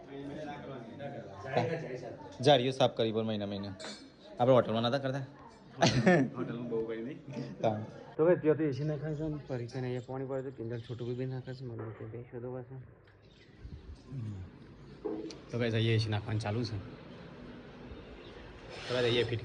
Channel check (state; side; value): identical; both; correlation 1.00